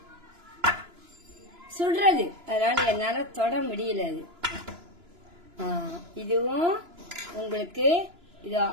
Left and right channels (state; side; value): late; left; 2.9 ms